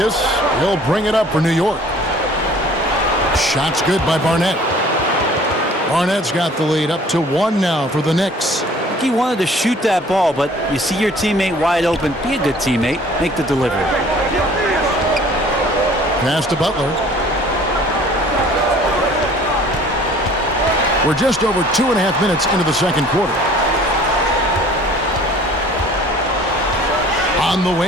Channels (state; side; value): normal; both; correlation 0.51